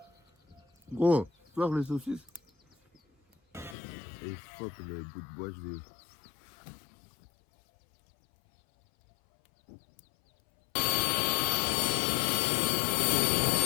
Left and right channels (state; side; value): drops out; right; at 3.8 s